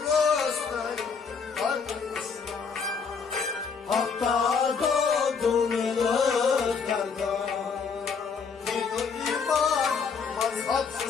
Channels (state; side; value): quieter; right; 5.6 dB